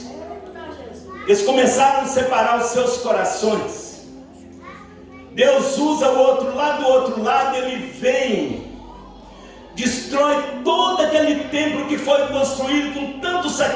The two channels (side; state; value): both; identical; correlation 1.00